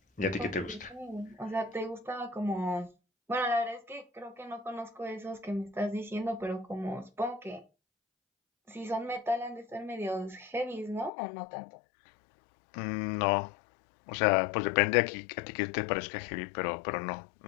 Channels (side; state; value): right; drops out; at 11.1 s